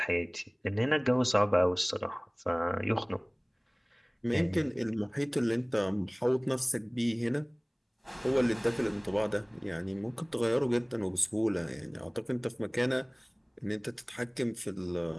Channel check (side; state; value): both; identical; correlation 1.00